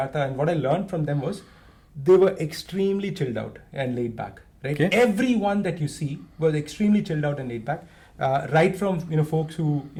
and what I learned from them, was they were extremely chilled out and laid back. Right, everyone that you see was extremely chilled out and laid back. Right from folks who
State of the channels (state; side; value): identical; both; correlation 1.00